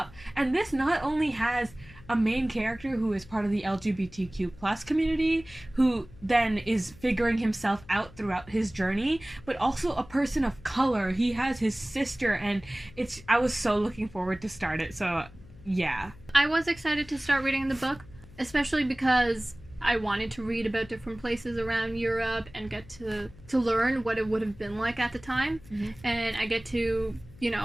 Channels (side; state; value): left; noise; hum, 21 dB below the sound